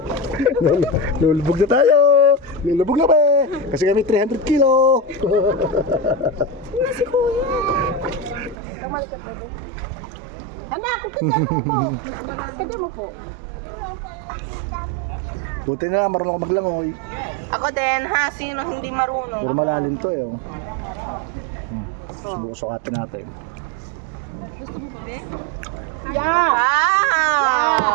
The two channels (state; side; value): drops out; left; at 8.6 s